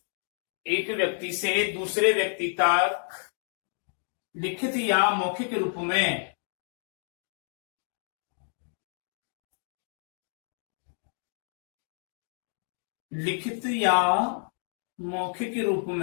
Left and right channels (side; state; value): right; silent; digital silence